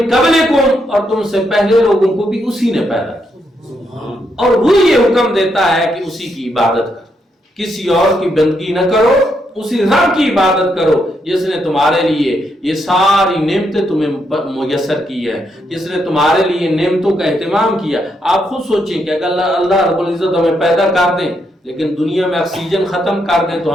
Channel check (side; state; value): both; normal; correlation 0.78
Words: قبلکم, اور تم سے پہلے لوگوں کو بھی اسی نے پیدا کیا. اور وہ یہ حکم دیتا ہے کہ اسی کی عبادت کرو, کسی اور کی بندگی نہ کرو, اسی رب کی عبادت کرو جس نے تمہارے لیے یہ ساری نعمتیں تمہیں میسر کی ہے, جس نے تمہارے لیے نعمتوں کا اہتمام کیا. آپ خود سوچیں کہ اگر اللہ رب العزت ہمیں پیدا کر دیں لیکن دنیا میں آکسیجن ختم کر دیں تو